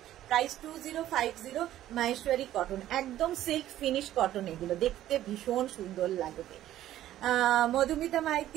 প্রাইস 2050। মাহেশ্বরী কটন, একদম সিল্ক ফিনিশ কটন, এগুলো দেখতে ভীষণ সুন্দর লাগবে। মধুমিতা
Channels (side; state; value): left; quieter; 13.1 dB